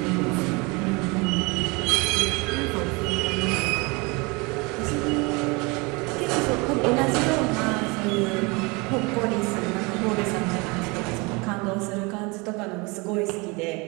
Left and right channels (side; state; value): left; quieter; 27.5 dB